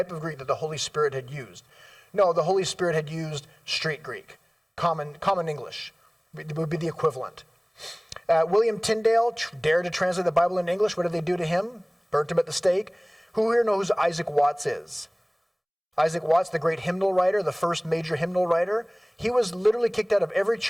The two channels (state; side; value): identical; both; correlation 1.00